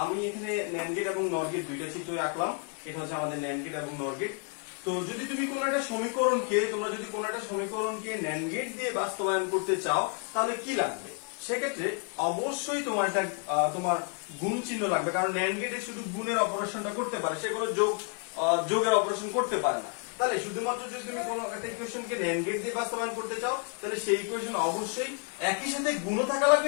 আমি এখানে ন্যান্ড গেট এবং নর গেট দুইটা চিত্র আঁকলাম। এটা হচ্ছে আমাদের ন্যান্ড গেট এবং নর গেট। তো যদি তুমি কোন একটা সমীকরণকে ন্যান্ড গেট দিয়ে বাস্তবায়ন করতে চাও তাহলে কি লাগবে? সেক্ষেত্রে অবশ্যই তোমার গুণ চিহ্ন লাগবে, কারণ ন্যান্ড গেটে শুধু গুণের অপারেশনটা করতে পারে, সে কোনো যোগের অপারেশন করতে পারে না। তাহলে শুধুমাত্র যদি তুমি কোনো একটা ইকুয়েশনকে ন্যান্ড গেট দিয়ে বাস্তবায়ন করতে চাও তাহলে সেই ইকুয়েশন অবশ্যই একই সাথে গুণও থাকা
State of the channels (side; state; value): right; quieter; 38.3 dB